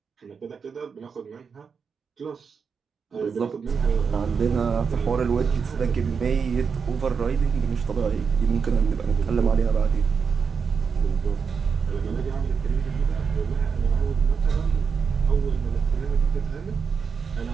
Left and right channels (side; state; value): left; quieter; 5.9 dB